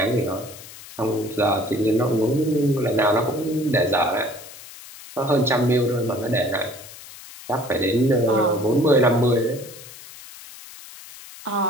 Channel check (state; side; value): noise; left; hiss, 17 dB below the sound